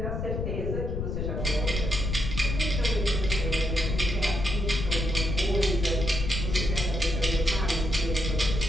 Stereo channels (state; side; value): noise; left; rumble, 2 dB below the sound